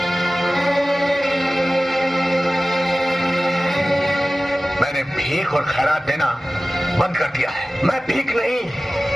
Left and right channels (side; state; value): both; normal; correlation 0.96